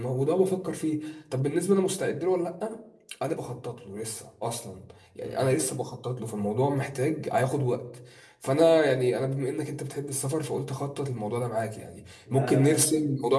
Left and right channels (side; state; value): both; identical; correlation 1.00